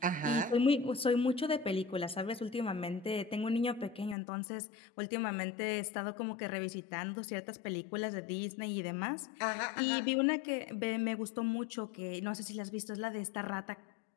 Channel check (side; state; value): right; drops out; at 4.2 s